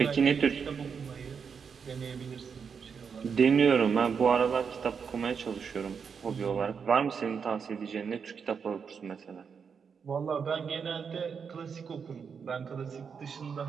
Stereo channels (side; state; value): left; quieter; 6.3 dB